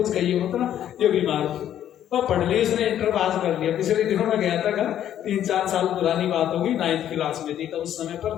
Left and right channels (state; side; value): quieter; right; 10.8 dB